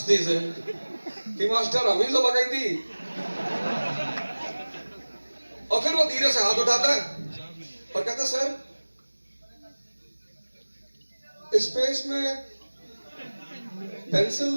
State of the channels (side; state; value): both; inverted; correlation -1.00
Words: से कि मास्टर हम ही तो बगई थी। और फिर वो धीरे से हाथ उठाता है और कहता, सर स्पेस में